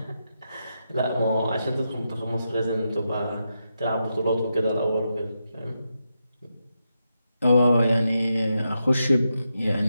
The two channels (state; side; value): inverted; both; correlation -0.86